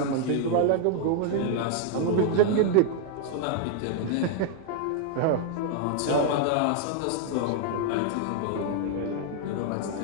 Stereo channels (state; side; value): different; both; correlation 0.00